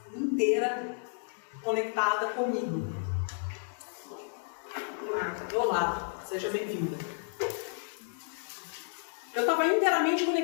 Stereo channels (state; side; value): silent; right; digital silence